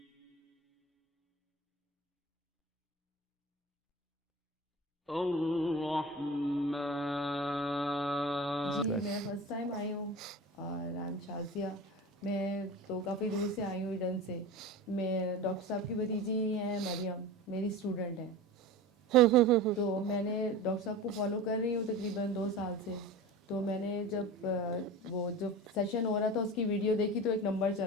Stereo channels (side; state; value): both; normal; correlation 0.32